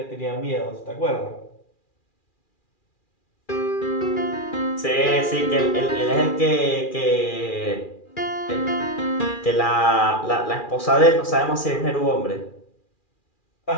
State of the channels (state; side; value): late; right; 2.4 ms